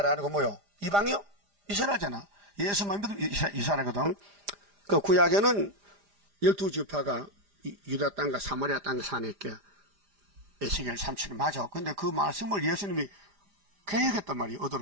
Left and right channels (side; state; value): left; late; 5.0 ms